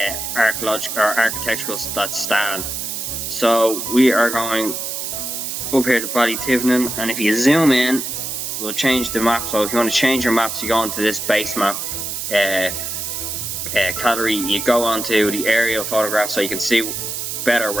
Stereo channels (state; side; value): noise; right; hiss, 4 dB below the sound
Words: architectural that stand. So we are going up here to Ballytivenin, and if you zoom in, we'll change the map. So if you want to change your maps, you go into this base map category, you go onto the aerial photograph so you can see better